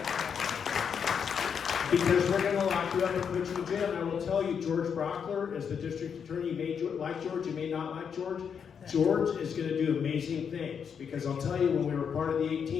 Because we're going to lock you up and put you in jail. And I will tell you, George Brockler, as the district attorney, you may like George, you may not like George. George is going to do amazing things. Because I'll tell you, when we were part of the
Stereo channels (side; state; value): right; quieter; 7.1 dB